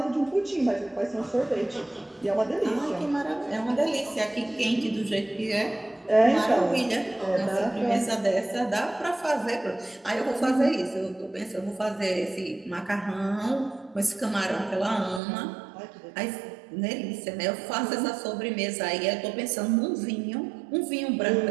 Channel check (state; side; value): drops out; left; at 15.2 s